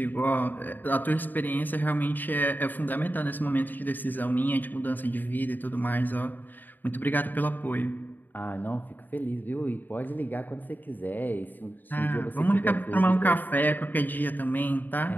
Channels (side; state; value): right; late; 0.089 ms